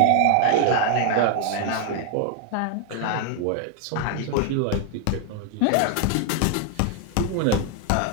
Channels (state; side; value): different; both; correlation 0.00